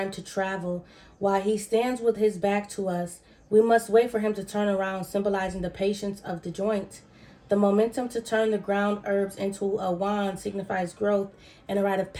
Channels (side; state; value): both; identical; correlation 1.00